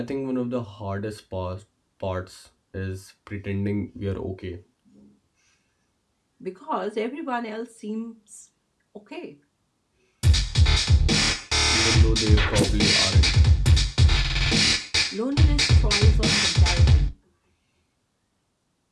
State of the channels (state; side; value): identical; both; correlation 1.00